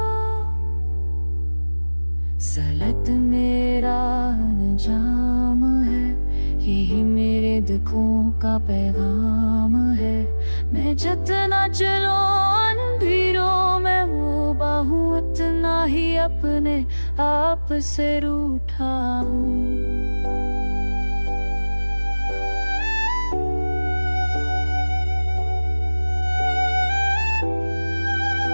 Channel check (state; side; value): inverted; both; correlation -1.00